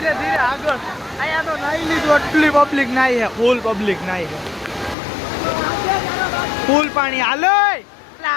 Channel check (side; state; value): right; drops out; at 5.0 s